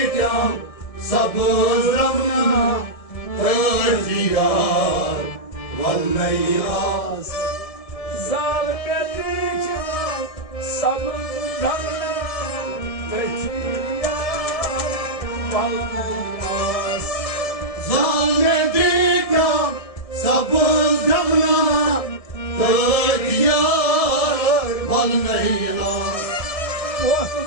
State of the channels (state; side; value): late; right; 1.6 ms